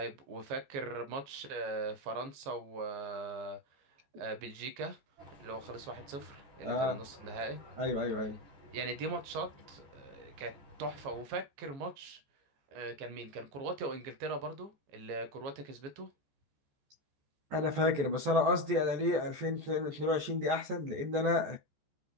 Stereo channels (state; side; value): late; left; 15 ms